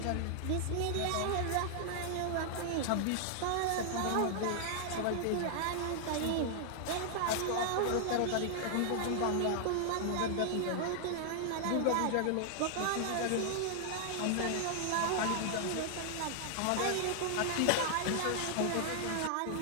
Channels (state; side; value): different; both; correlation 0.00